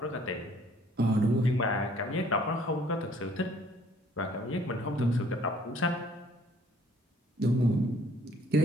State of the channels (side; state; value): both; normal; correlation 0.59